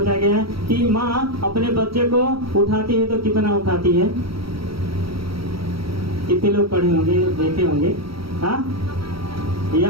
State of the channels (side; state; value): left; late; 0.75 ms